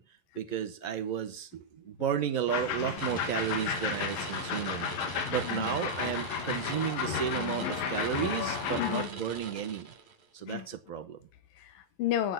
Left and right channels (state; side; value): late; right; 11 ms